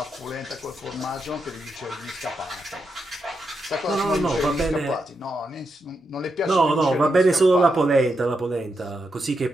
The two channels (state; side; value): normal; both; correlation 0.84